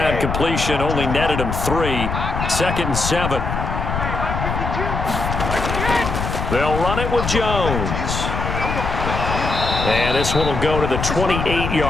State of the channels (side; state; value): left; noise; rumble, 3 dB below the sound